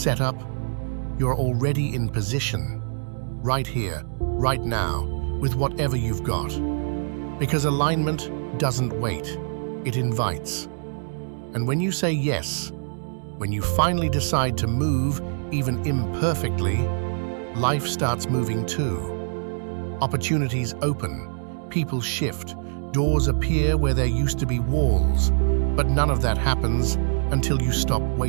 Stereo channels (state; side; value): silent; left; digital silence